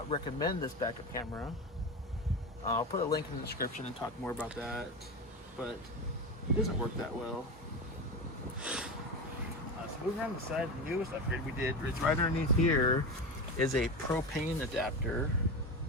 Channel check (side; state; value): both; normal; correlation 0.22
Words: recommend this backup camera. I'll put a link in the description and talk more about that, but it doesn't work that well. So moving around the side, the newest upgrade we did is right underneath here is a propane adapter.